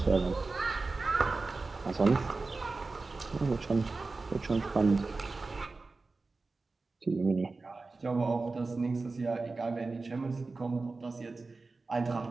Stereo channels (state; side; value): quieter; left; 3.7 dB